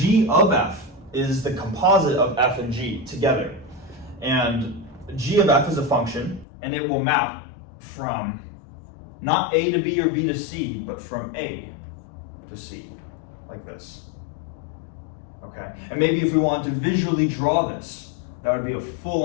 of f is the composite of f and g together. And g of f is a function, and it will map from not a to b or b to c, but from a to c, like this. Okay, and maybe if we wanted to visually draw this, that would be a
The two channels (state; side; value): drops out; right; at 6.5 s